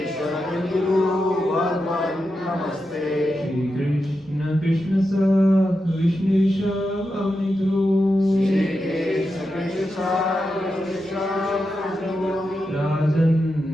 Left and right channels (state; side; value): normal; both; correlation 0.88